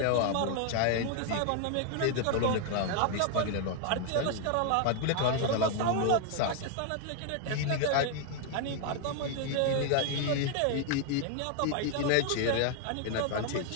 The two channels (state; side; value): different; both; correlation 0.00